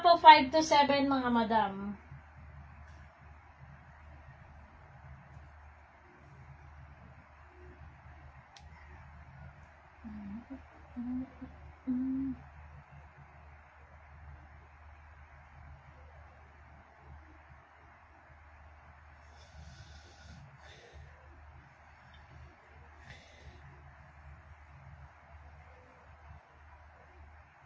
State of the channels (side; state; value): both; identical; correlation 1.00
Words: po 5 to 7, mga madam.